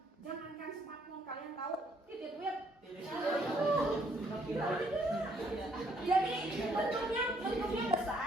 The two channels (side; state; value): both; normal; correlation 0.67